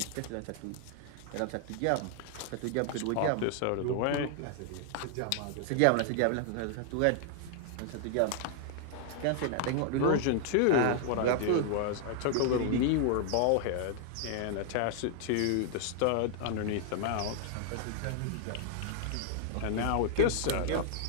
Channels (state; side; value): different; both; correlation 0.00